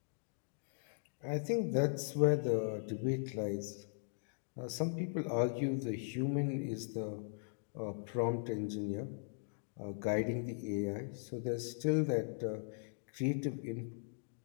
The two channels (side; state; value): right; silent; digital silence